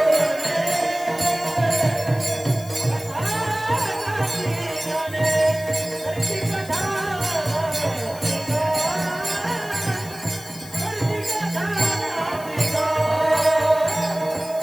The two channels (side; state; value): left; noise; hiss, 17 dB below the sound